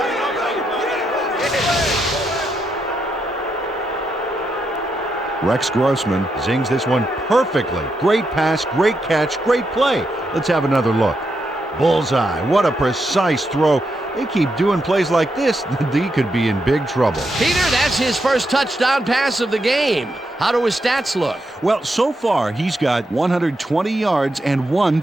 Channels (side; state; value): both; normal; correlation 0.82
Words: Rex Grossman zings this one perfectly. Great pass, great catch, great play. Let's have another look. Bullseye. What a precise throw. They keep doing plays like this, the D could be in big trouble. Peter, that's his first touchdown pass of the game. How do his stats look? Well, so far, he's got 120 yards and 1